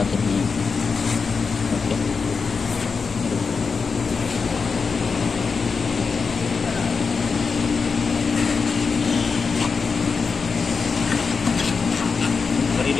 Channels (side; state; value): right; quieter; 5.0 dB